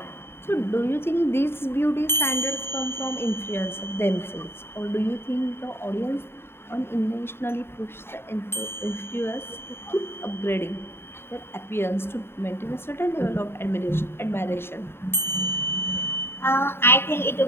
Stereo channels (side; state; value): right; late; 0.11 ms